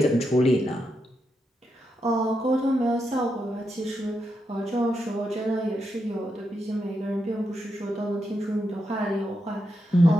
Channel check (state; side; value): normal; both; correlation 0.84